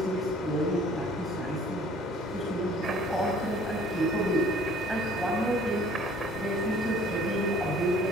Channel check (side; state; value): both; normal; correlation 0.53